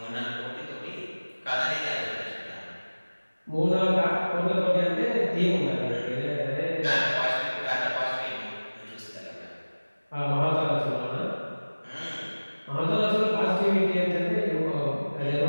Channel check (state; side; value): inverted; both; correlation -1.00